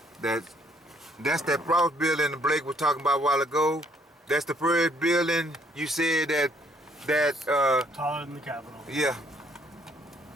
That's that Frost building that Blake was talking about a while ago. That's the first building you said that Taller than the Capitol. yeah.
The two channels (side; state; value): both; normal; correlation 0.65